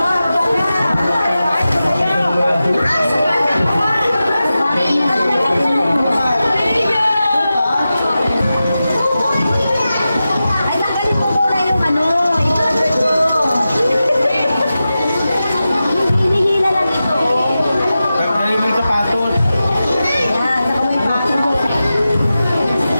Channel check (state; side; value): inverted; both; correlation -0.93